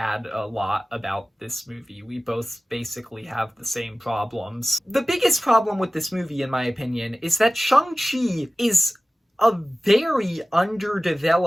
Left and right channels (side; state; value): both; normal; correlation 0.97